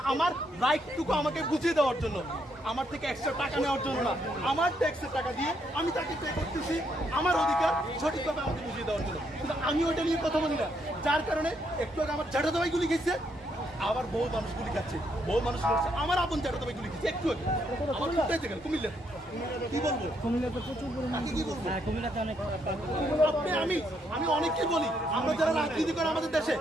আমার রাইটটুকু আমাকে বুঝিয়ে দেওয়ার জন্য, আমার থেকে এক্সট্রা টাকা নেওয়ার জন্য না। আমার ট্যাক্সের টাকা দিয়ে আমি তাকে পে করতেছি আমার অধিকার সঠিকভাবে আমাকে বুঝিয়ে দেওয়ার জন্য। কিন্তু আমি ওইটা নিয়ে কথা বলি না, যার কারণে একটু আগে আমার জ্যাঠা দাবাই গুলি খেয়েছে, আবার বহু মানুষ গুলি খাচ্ছে, বহু মানুষ করছে। আমার আপন জ্যাঠা দাবাই গুলি খেয়েছে একটু আগে, আমার কুমিল্লাতে গেল। কুমিল্লা কি বলবো, কুমিল্লাতে প্রচুর পরিমাণে কি বলবো, কুমিল্লাতে অনেক আমি অনেককে বলি, আমরা যারা রাজনীতি করে আমাদের দেশে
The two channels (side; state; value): both; normal; correlation 0.75